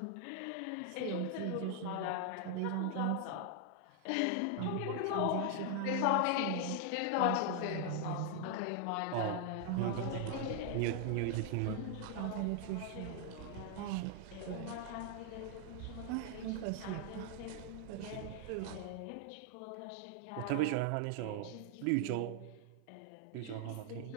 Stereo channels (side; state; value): both; different; correlation 0.00